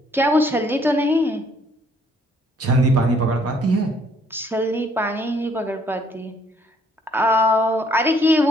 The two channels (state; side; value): normal; both; correlation 0.65